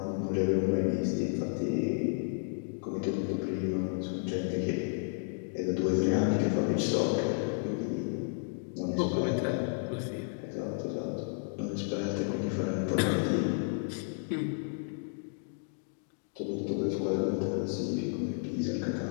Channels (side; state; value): right; silent; digital silence